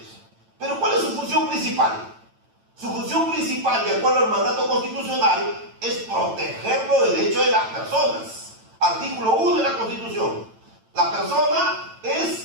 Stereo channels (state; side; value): late; left; 9.0 ms